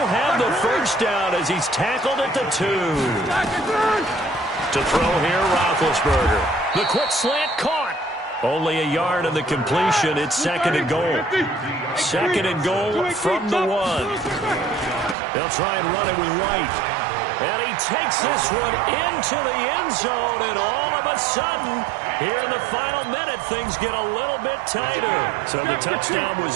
have the 1st down as he's tackled at the 2. To throw here, Roethlisberger. The quick slant caught. Only a yard on the completion. It's 2nd and goal. 2nd and goal from the 1. They'll try and run it with White. And he takes this one into the end zone, and all of a sudden, here in the final minute, things get a little bit tighter. So the touchdown was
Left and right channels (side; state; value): left; drops out; at 15.2 s